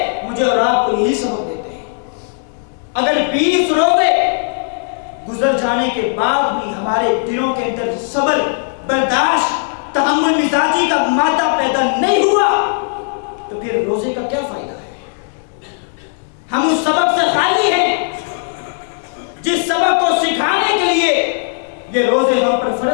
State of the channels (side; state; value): right; silent; digital silence